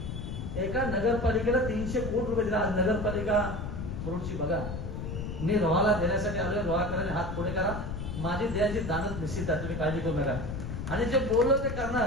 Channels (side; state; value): left; noise; rumble, 5 dB below the sound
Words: एका नगरपालिकेला 300 कोटी रुपये दिला. आज नगरपालिका मुरुडची बघा. मी रोहाला देण्यासाठी आलोय. रोहाकरांनी हात पुढे करा. माझी द्यायची दानच निश्चित आहे, तुम्ही काळजी करू नका. आणि जे बोललो ते